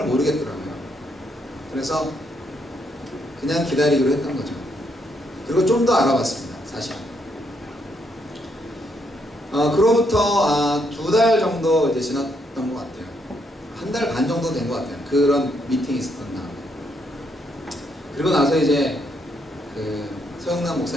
모르겠더라고요. 그래서 그냥 기다리기로 했던 거죠. 그리고 좀 더 알아봤습니다. 사실 그로부터 2달 정도 이제 지났던 것 같아요. 1달 반 정도 된 것 같아요. 그런 미팅이 있었던 다음에. 그리고 나서 이제 그 서영남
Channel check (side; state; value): both; normal; correlation 0.75